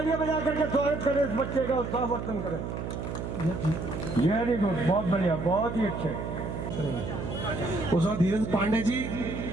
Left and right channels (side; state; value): right; noise; hum, 5 dB below the sound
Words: बजा करके स्वागत करें इस बच्चे का, उत्साहवर्धन करें। वेरी गुड, बहुत बढ़िया, बहुत ही अच्छे। उस वक्त धीरज पांडे जी